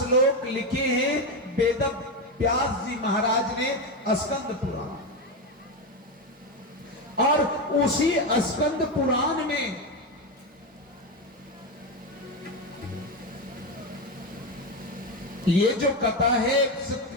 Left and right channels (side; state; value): both; normal; correlation 0.13